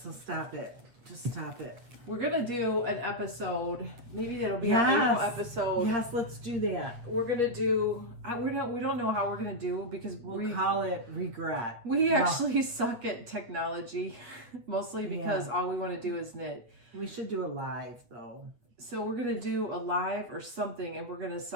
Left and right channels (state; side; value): late; left; 8.7 ms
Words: So stop it. Just stop it. We're gonna do an episode. Maybe that'll be our April episode. Yes, let's do that. We're gonna do. We don't know how we're gonna do because we'll call it regret. We actually suck at technology, mostly because all we want to do is knit. We should do a live though. So we're gonna do a live or something, and we're gonna